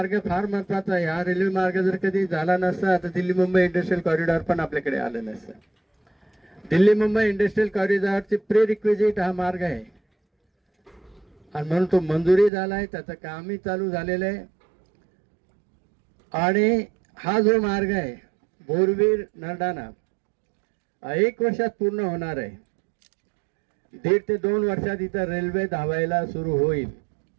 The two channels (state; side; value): drops out; left; at 12.5 s